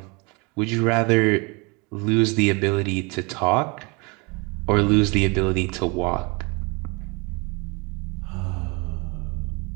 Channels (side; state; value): left; quieter; 29.3 dB